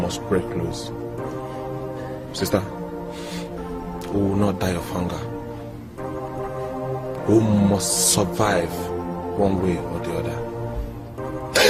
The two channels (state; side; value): identical; both; correlation 1.00